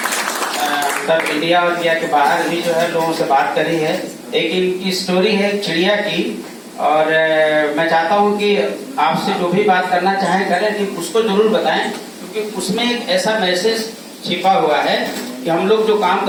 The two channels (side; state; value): both; identical; correlation 1.00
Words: सब इंडिया और इंडिया के बाहर भी जो है लोगों से बात करी है। एक इनकी स्टोरी है चिड़िया की, और मैं चाहता हूं कि आपसे जो भी बात करना चाहें करें, कि उसको जरूर बताएं, क्योंकि उसमें एक ऐसा मैसेज छिपा हुआ है कि हम लोग जो काम